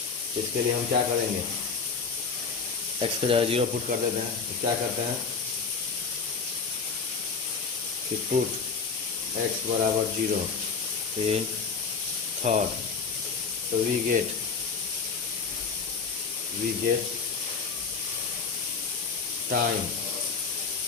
इसके लिए हम क्या करेंगे एक्स का जगह 0 पुट कर देते हैं। तो क्या करते हैं कि पुट एक्स बराबर 0 इन थर्ड, तो we get time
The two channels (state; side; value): quieter; right; 5.4 dB